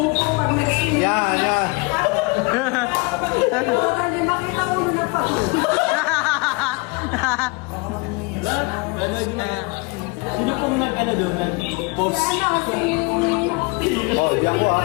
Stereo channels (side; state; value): right; quieter; 28.2 dB